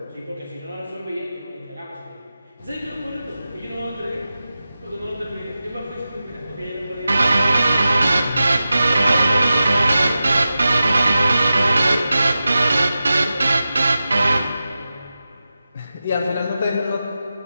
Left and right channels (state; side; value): inverted; both; correlation -0.93